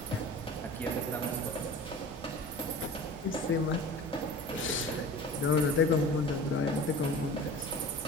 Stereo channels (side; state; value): both; normal; correlation 0.38